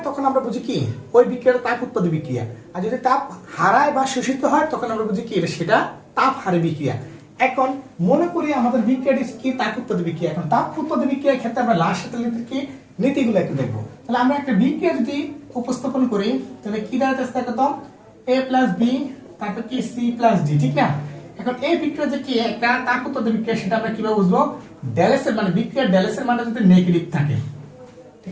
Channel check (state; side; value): identical; both; correlation 1.00